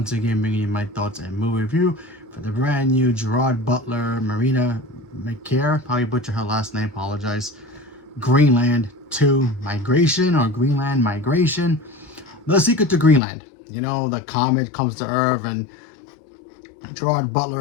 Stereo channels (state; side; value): drops out; right; at 13.2 s